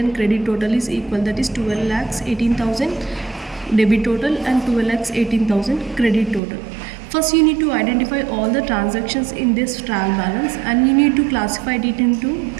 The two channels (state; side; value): drops out; left; at 6.4 s